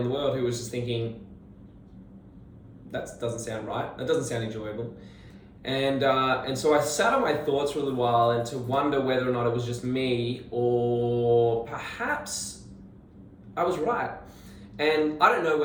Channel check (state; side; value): identical; both; correlation 1.00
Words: the world who was just thinking, that doesn't sound right. That doesn't sound enjoyable. And so I sat on my thoughts for a little while and to wonder whether or not it was just me, or perhaps I was right. And I don't know